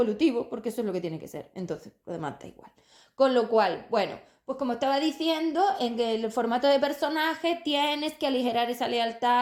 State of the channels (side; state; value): both; identical; correlation 1.00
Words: porque eso es lo que tiene que ser. Entonces, lo demás da igual. Con lo cual, bueno, pues como estaba diciendo, en el formato de personaje tienes que aligerar esa